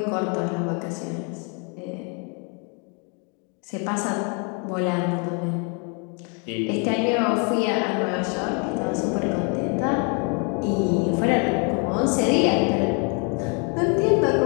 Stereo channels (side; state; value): right; quieter; 36.5 dB